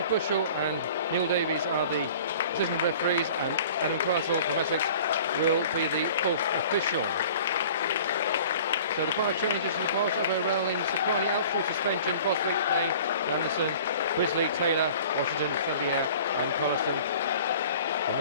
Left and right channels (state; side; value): inverted; both; correlation -0.46